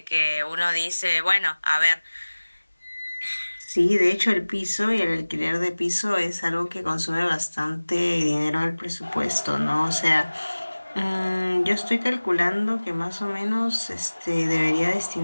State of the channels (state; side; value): inverted; both; correlation -1.00